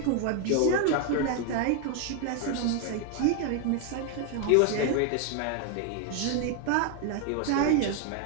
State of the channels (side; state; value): both; different; correlation 0.00